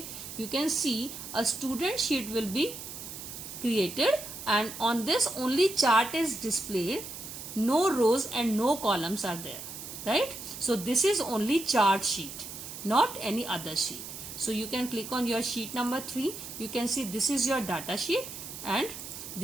You can see a student sheet will be created and on this only chart is displayed. No rows and no columns are there, right? So this is only chart sheet, not any other sheet. So you can click on your sheet number 3. You can see this is your data sheet and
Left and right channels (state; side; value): noise; right; hiss, 10 dB below the sound